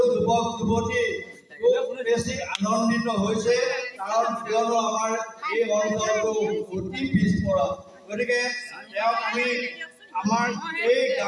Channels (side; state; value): both; identical; correlation 1.00